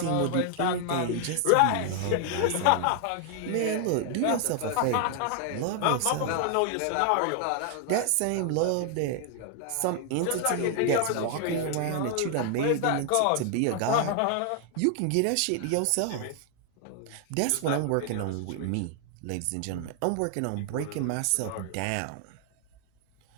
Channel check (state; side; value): different; both; correlation 0.00